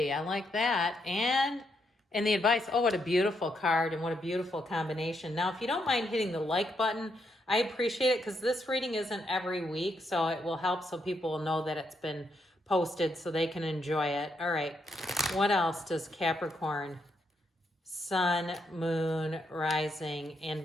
I like that. And the advice, oh, what a beautiful card and what a beautiful combination. Now, if you don't mind hitting the like button, I appreciate it because this reading isn't every week, so it will help so people will know that it's been posted so they can enjoy it. All right, what else does Capricorn, Sun, Moon, Rising, and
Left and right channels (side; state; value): both; normal; correlation 0.78